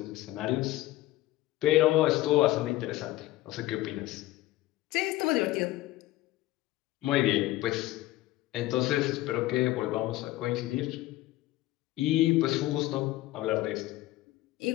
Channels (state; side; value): quieter; right; 16.8 dB